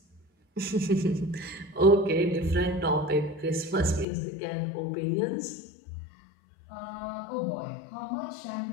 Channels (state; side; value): drops out; right; at 4.0 s